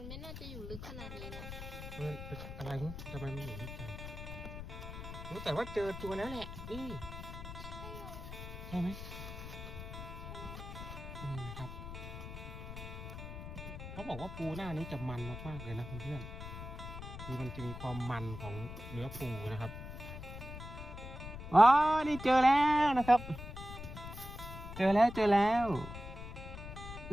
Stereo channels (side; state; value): left; noise; rumble, 9 dB below the sound